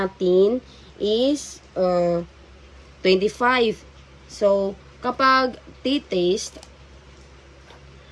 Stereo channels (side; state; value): both; identical; correlation 1.00